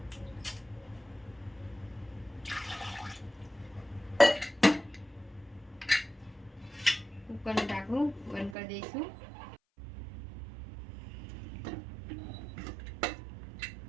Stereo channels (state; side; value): drops out; left; at 8.6 s